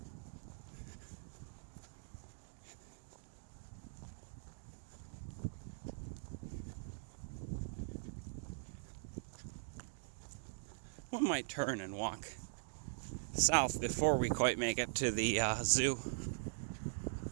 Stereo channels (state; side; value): silent; left; digital silence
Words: One might turn and walk south before we quite make it to the zoo.